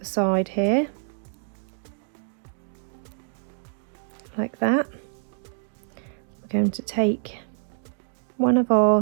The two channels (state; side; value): silent; left; 61 dB below the other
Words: side here, like that, we're going to take one of